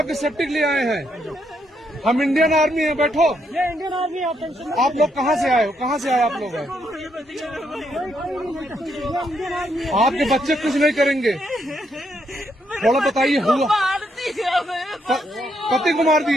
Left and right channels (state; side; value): normal; both; correlation 0.76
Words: सेफ्टी के लिए आए हैं, हम इंडियन आर्मी हैं, बैठो। ये इंडियन आर्मी है, आप टेंशन मत आप लोग कहाँ से आए हो, कहाँ से आए आप लोग हैं? आपके बच्चे कुछ नहीं करेंगे, थोड़ा बताइए। हुआ पति को मार